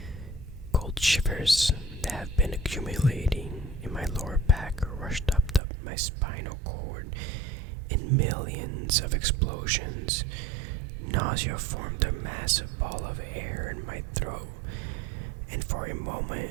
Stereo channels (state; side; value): drops out; left; at 5.6 s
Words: Cold shivers that have been accumulating in my lower back rushed up my spinal cord in millions of explosions. Nausea formed a massive ball of air in my throat, and for a